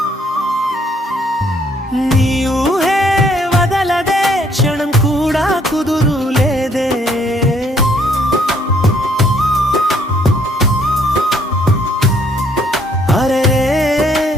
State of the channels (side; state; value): both; normal; correlation 0.66